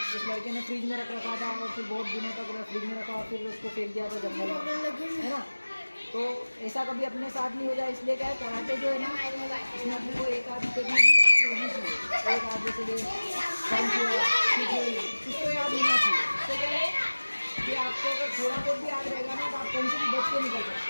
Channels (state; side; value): inverted; both; correlation -1.00